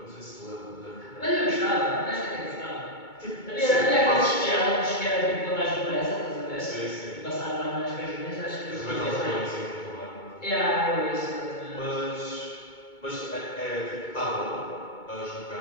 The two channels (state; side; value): late; right; 2.2 ms